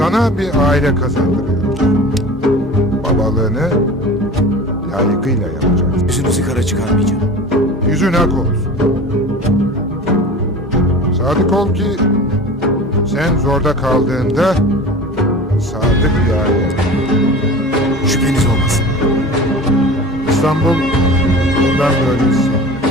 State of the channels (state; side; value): normal; both; correlation 0.37